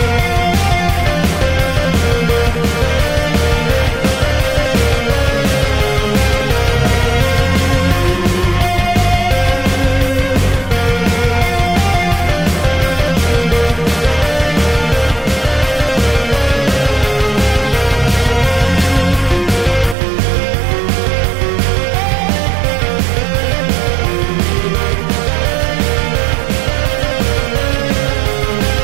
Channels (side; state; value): left; drops out; at 20.0 s